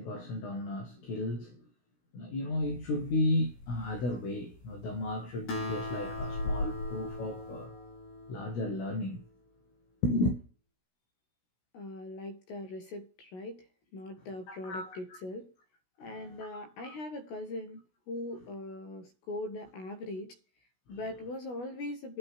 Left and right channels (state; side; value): late; right; 16 ms